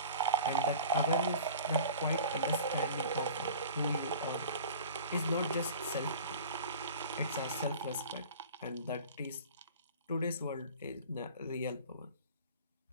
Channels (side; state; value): both; inverted; correlation -0.40